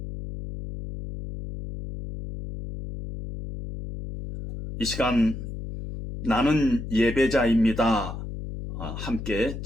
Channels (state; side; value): noise; left; hum, 8 dB below the sound